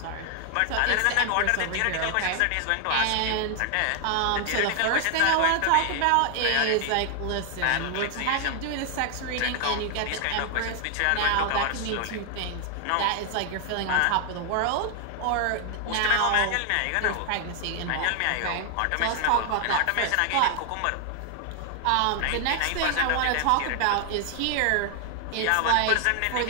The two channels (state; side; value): different; both; correlation 0.00